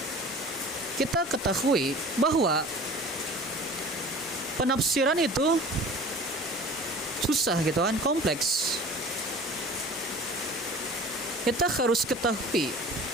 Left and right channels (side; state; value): both; normal; correlation 0.42